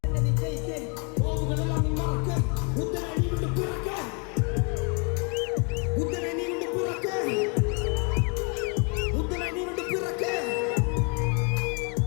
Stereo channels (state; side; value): quieter; right; 36.3 dB